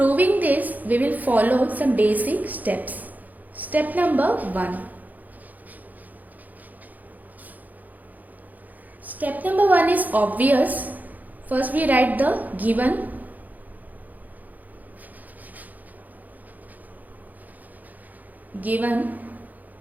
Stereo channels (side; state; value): left; late; 0.081 ms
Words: this, we will follow some basic steps. Step number 1. Step number 1 is obvious. First we write the given.